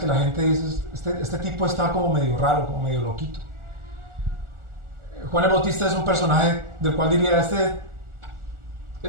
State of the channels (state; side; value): late; left; 1.4 ms